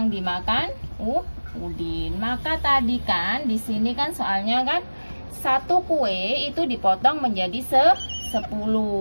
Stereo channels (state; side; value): inverted; both; correlation -1.00